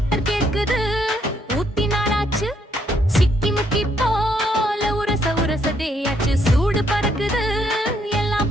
கேக்குது ஊத்தி நாளாச்சு சிக்கி முக்கி போல உரச உரசதேயாச்சு சூடு பறக்குது எல்லாம்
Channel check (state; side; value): normal; both; correlation 0.72